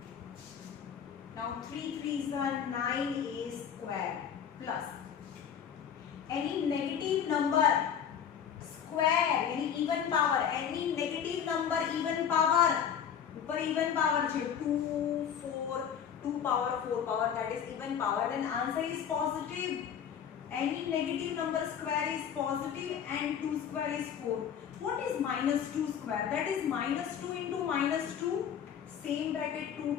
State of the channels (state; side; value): quieter; right; 8.3 dB